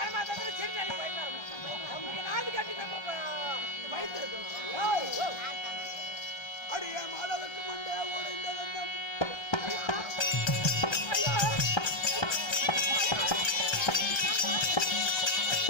சரி நாளைக்கு போயிடலாம். நாடு கட்டி நம்ம வயிற்று அடிய மாதவுக்கு முன்னே உடைந்த வந்தம்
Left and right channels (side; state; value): right; late; 1.3 ms